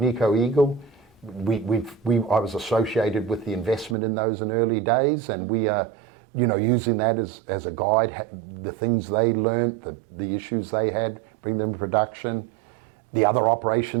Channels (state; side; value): drops out; left; at 4.0 s